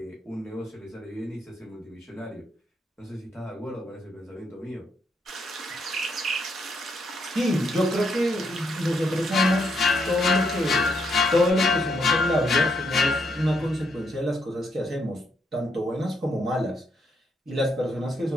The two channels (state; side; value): normal; both; correlation 0.76